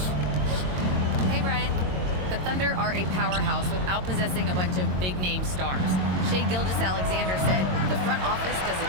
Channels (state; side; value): late; left; 22 ms